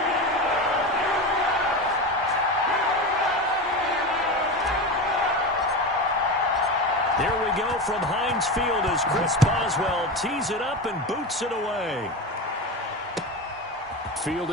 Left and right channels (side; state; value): both; normal; correlation 0.22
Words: Here we go from Heinz Field as Chris Boswell tees it up and boots it away.